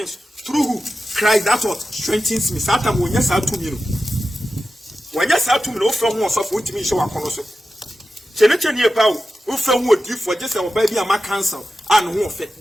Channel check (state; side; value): normal; both; correlation 0.92